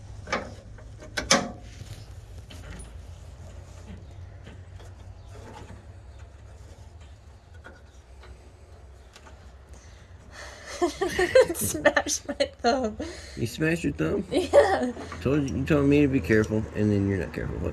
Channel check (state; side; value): identical; both; correlation 1.00